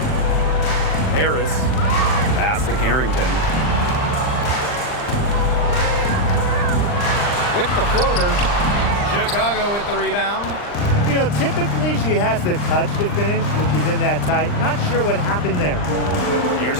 Harris. Pass to Carrington. With the floater. Chicago with the rebound. You know, typically she has the touch to finish when she's in that tight. Not sure what happened there.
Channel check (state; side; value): late; right; 39 ms